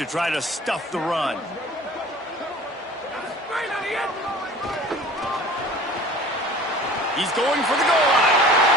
try to stuff the run. He's going for the goal line.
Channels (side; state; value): both; normal; correlation 0.43